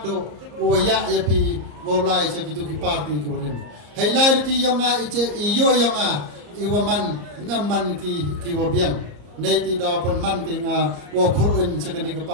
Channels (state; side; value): late; left; 34 ms